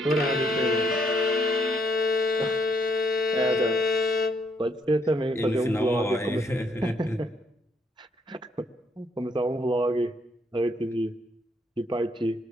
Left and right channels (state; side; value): normal; both; correlation 0.71